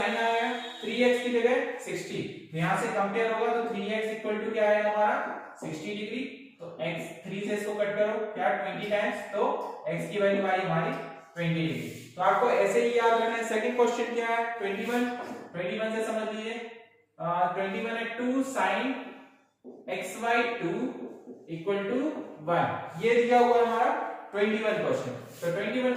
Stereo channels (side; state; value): both; identical; correlation 1.00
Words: आया, 3x की जगह 60, तो यहाँ से कंपेयर होगा तो 3x इक्वल टू क्या आएगा हमारा 60 डिग्री, तो x 3 से इसको कट करो क्या 20 टाइम्स, तो x की वैल्यू आई हमारी 20 डिग्री। तो आपको ऐसे ही याद रखना है। सेकंड क्वेश्चन क्या है 21 से समझ लीजिए, 21 है 2 sin x/2 इक्वल टू 1, ये दिया हुआ है हमारा 21 क्वेश्चन। तो 21